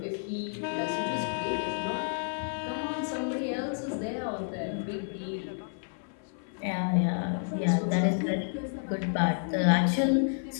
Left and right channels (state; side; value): silent; right; 55 dB below the other